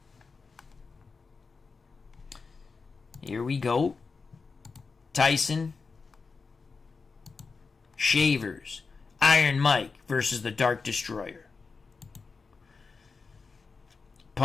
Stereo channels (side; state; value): right; quieter; 4.6 dB